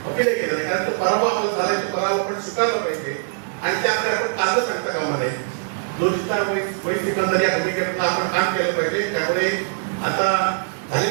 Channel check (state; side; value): silent; left; digital silence